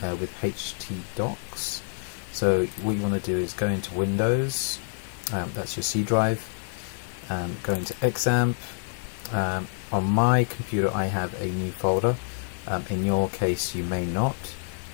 htdocs. So what you want to do is go into Windows, that's your C drive, go into XAMPP. On my computer I have a new folder. In your case you may not.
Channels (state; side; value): silent; right; digital silence